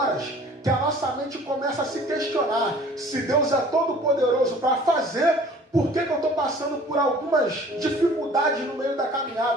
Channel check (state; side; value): normal; both; correlation 0.49